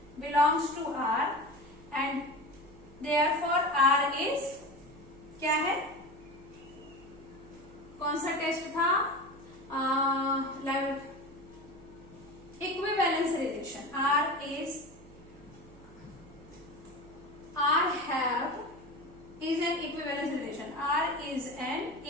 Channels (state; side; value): noise; right; hum, 21 dB below the sound